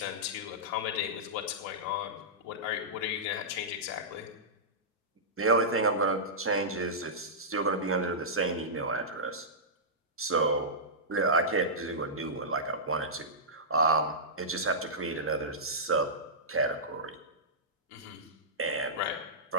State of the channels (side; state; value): both; normal; correlation -0.15